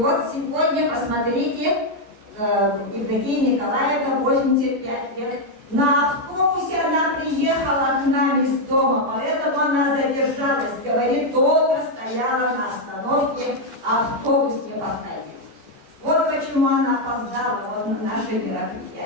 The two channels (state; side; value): late; left; 14 ms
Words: сегодня, посмотрите, Евдокия Николаевна, 85 лет. На автобусе она приехала к нам из дома, поэтому она задержалась. Говорит, долго стояла на остановке, автобус не подходил. Вот почему она опоздала вот на наше